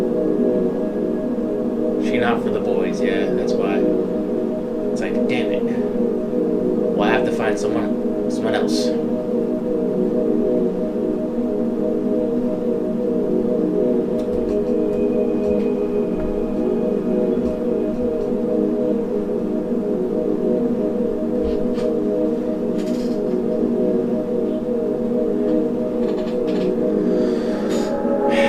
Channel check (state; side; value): identical; both; correlation 1.00